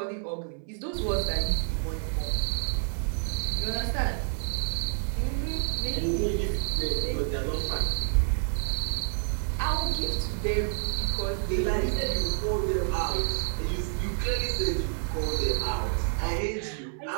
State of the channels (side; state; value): left; silent; 59 dB below the other